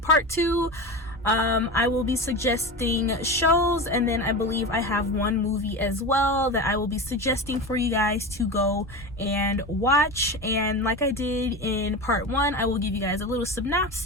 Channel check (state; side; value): normal; both; correlation 0.24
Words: 2, I will be suggesting shows, and then I believe I have one movie as well that I will be suggesting for you guys to go and watch. And like I did in part 1, I will give you guys a little